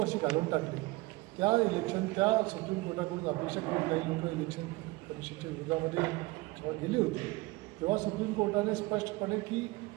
घालवून टाकली. त्या सुप्रीम कोर्टाकडून अपेक्षा करून काही लोक इलेक्शन कमिशनच्या विरोधामध्ये जेव्हा गेले होते तेव्हा सुप्रीम कोर्टाने स्पष्टपणे की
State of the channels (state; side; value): quieter; left; 22.0 dB